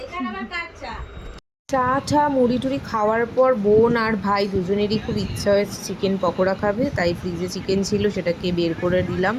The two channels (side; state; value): both; identical; correlation 1.00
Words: চা টা মুড়ি টুড়ি খাওয়ার পর বোন আর ভাই দুজনেরই খুব ইচ্ছা হয়েছে চিকেন পকোড়া খাবে, তাই ফ্রিজে চিকেন ছিল সেটাকে বের করে দিলাম,